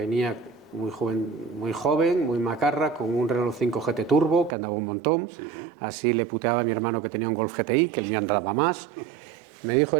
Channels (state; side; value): drops out; left; at 4.5 s